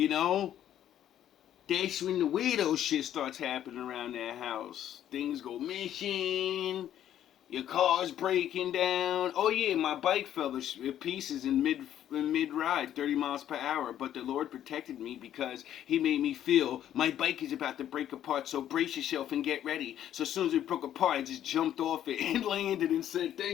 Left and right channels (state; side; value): quieter; right; 11.1 dB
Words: know, that's when the weirdo shit starts happening around that house. Things go missing. Your car's breaking down. Oh yeah, my bike fell to pieces in mid ride, 30 miles per hour. But the Lord protected me because He made me feel my bike is about to break apart. So brace yourself and get ready. So as soon as it broke apart, I just jumped off it and landed and said,